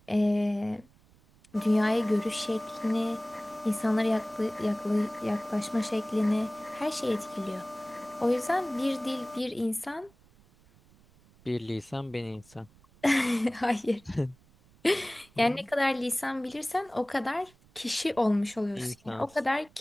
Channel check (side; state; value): right; noise; rumble, 29 dB below the sound